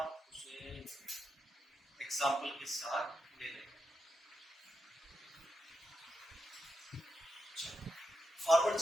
उसे एग्जांपल के साथ ले लेंगे। फॉरवर्ड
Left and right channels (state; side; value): normal; both; correlation 0.85